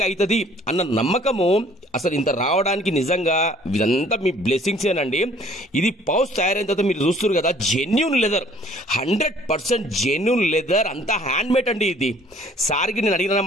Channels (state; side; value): normal; both; correlation 0.57